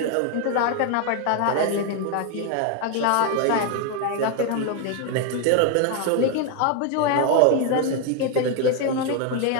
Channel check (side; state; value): both; different; correlation 0.01